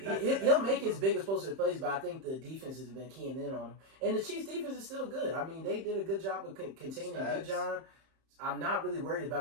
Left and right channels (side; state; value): left; late; 31 ms